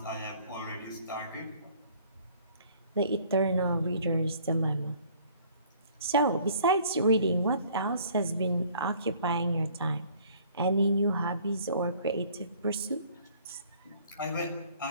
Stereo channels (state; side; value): inverted; both; correlation -0.56